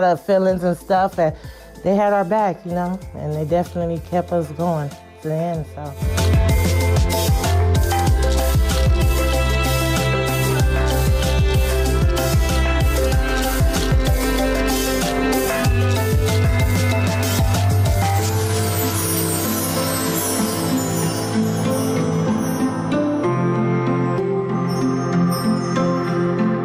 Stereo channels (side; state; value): both; identical; correlation 1.00